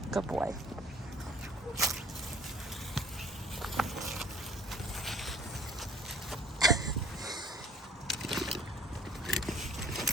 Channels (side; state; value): both; normal; correlation 0.53